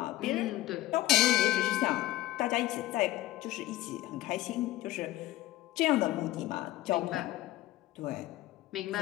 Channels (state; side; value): quieter; right; 16.6 dB